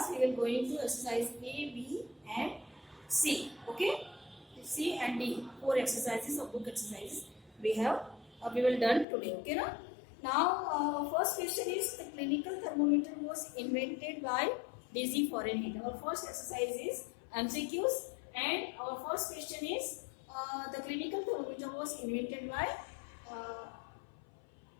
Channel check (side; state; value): right; drops out; at 9.1 s